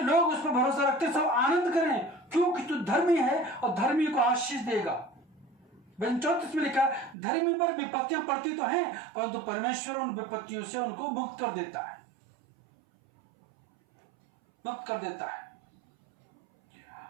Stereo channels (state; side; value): drops out; left; at 7.2 s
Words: उस पर भरोसा रखते हैं सब आनंद करें, क्योंकि तू धर्मी है और धर्मी को आशीष देगा। भजन 34 में लिखा, धर्मी पर विपत्तियां पड़ती तो हैं, परंतु परमेश्वर उन विपत्तियों से उनको मुक्त कर देता है, मुक्त कर देता है।